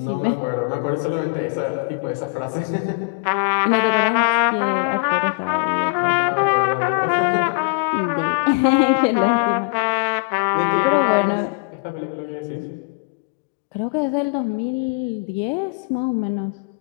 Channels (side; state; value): right; quieter; 33.5 dB